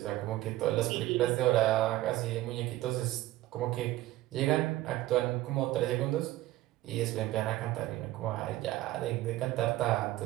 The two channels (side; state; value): left; quieter; 16.2 dB